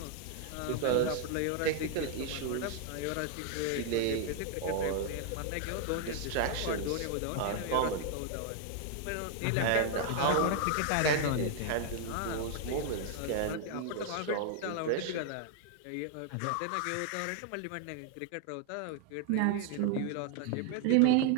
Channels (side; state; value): both; different; correlation 0.00